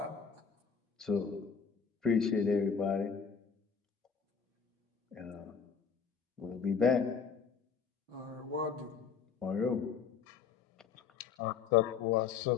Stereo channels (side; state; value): right; quieter; 6.3 dB